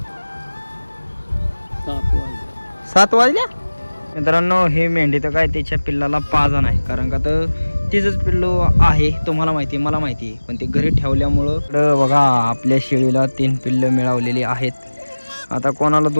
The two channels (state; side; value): inverted; both; correlation -1.00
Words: 7 वाजल्या मित्रांनो. हे मेंढी तर काय त्याच्या पिल्लाला पाजा नाही कारण का तर तिचंच पिल्लू आहे. तुम्हाला माहिती आहे मला माहिती आहे पण ते घरी ठेवल्यामुळं बघा आपल्या शेळीला 3 पिल्ल मिळवलेली आहेत. आता कोणाला